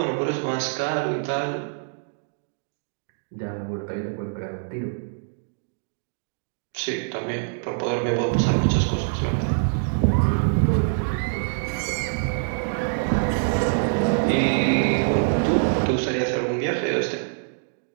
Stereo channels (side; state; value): left; silent; digital silence